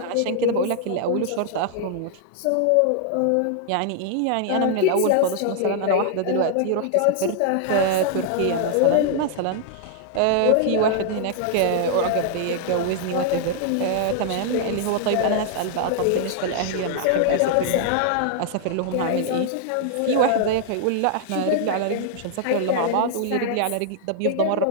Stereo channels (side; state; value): both; different; correlation -0.01